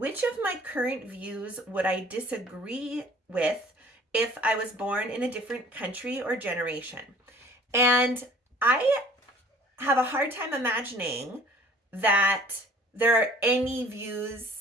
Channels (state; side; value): normal; both; correlation 0.51